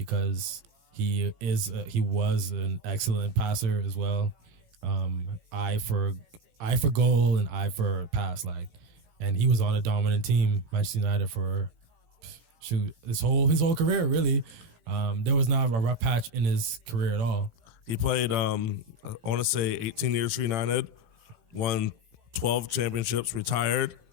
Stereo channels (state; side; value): late; left; 18 ms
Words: he was an excellent passer as well. Eye for goal and eye for pass, and he was on a dominant team, Manchester United, for his whole career. Really, there was not a rough patch in his career at all. He played, I want to say 18 years for United, won 12 championships, retired,